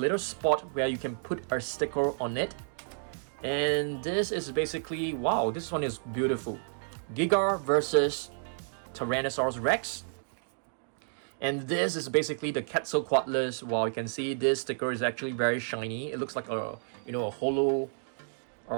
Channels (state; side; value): silent; left; digital silence